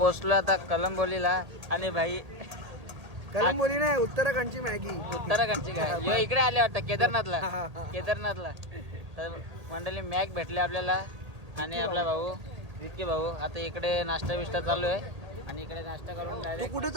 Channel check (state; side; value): late; left; 1.8 ms